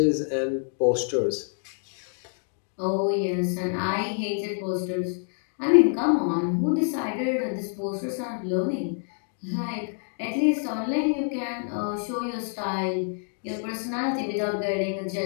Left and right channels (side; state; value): right; silent; 56 dB below the other